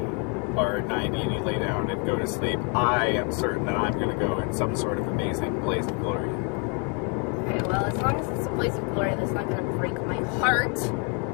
are 90 and you lay down and go to sleep, I am certain that I'm going to go in some sort of amazing blaze of glory. Okay, well, as long as it's a blaze of glory that's not going to break my heart,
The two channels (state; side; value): quieter; right; 36.4 dB